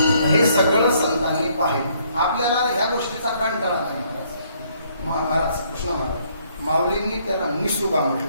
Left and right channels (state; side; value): inverted; both; correlation -0.67